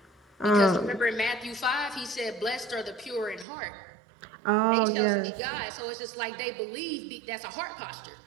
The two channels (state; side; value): drops out; left; at 3.5 s